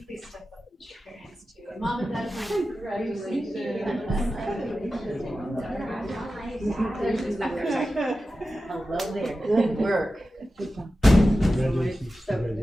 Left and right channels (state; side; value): normal; both; correlation 0.93